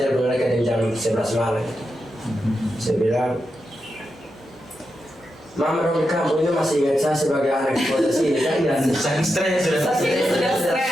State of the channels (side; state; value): both; normal; correlation 0.87